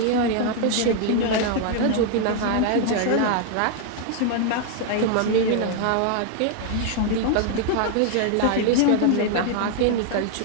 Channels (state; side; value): different; both; correlation 0.00